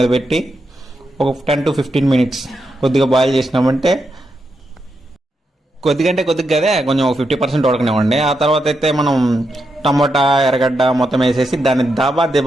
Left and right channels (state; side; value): normal; both; correlation 0.84